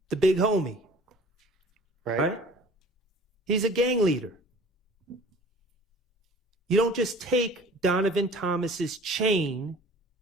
the big homie. Right? He's a gang leader. You don't just take Donovan Thomas's chain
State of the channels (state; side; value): normal; both; correlation 0.47